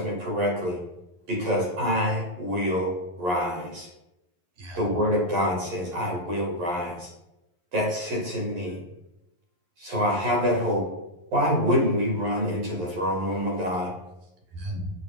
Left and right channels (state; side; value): late; left; 11 ms